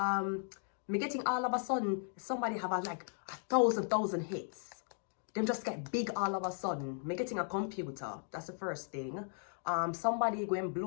getting all of a sudden, somebody have like 1,000 hits. Them just get big all of a sudden. I'm getting a computer. That's the first thing. Somebody go and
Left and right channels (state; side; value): silent; right; 53 dB below the other